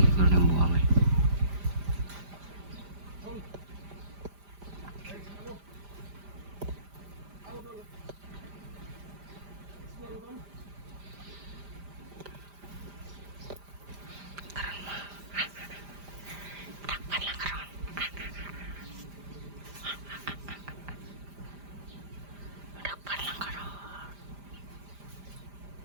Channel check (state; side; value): late; left; 5.0 ms